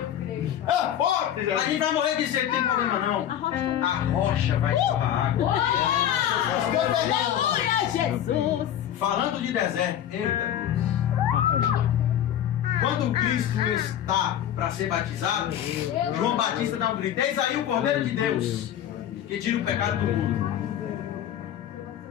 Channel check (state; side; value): quieter; right; 10.7 dB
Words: A gente vai morrer de sede, não tem problema não. A rocha vai torrar água. Aleluia, Jesus! Falando de deserto, eita. Quando Cristo está para ser batizado, João Batista dá um grito: eis aí o Cordeiro de Deus, que tira o pecado do mundo.